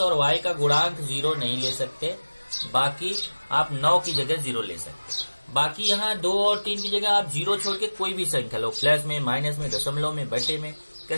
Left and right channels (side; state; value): both; inverted; correlation -1.00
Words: और y का गुणांक 0 नहीं ले सकते, बाकी आप 9 की जगह 0 ले सकते। बाकी यहाँ 2 और 3 की जगह आप 0 छोड़ के कोई भी संख्या लो, प्लस में, माइनस में, दशमलव में, बटे में,